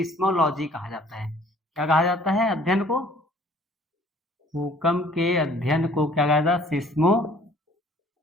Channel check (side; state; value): both; normal; correlation 0.55